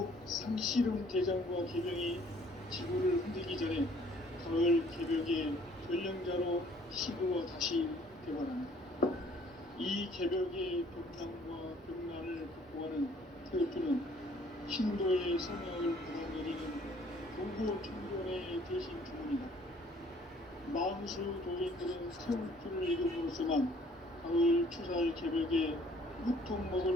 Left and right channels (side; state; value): both; normal; correlation 0.58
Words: 상씨름 대장과 계명이 지구를 흔들기 전에 가을 개벽의 전령자로 시도와 다시 개발한다. 이 개벽의 병난과 병난을 극복하는 태극주는 신도의 성향을 받아들이는 교구 청년의 대신 주문이다. 만수 도인들은 태극주를 읽음으로써만 가을 추살 개벽에 우통 먹을